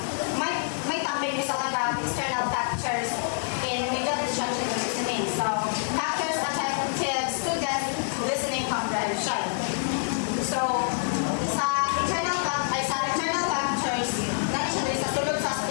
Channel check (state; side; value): silent; right; digital silence